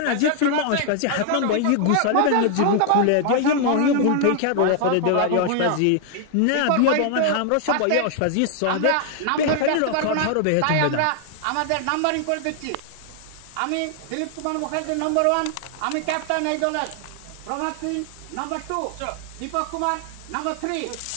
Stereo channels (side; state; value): both; different; correlation 0.00